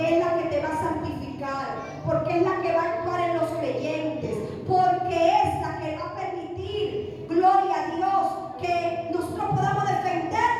es la que te va a santificar, porque es la que va a actuar en los creyentes, porque es la que va a permitir, gloria a Dios, que nosotros podamos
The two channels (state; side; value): identical; both; correlation 1.00